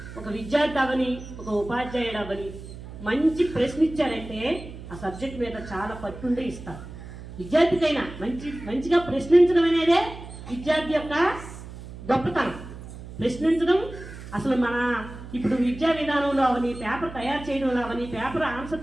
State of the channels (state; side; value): noise; right; hum, 13 dB below the sound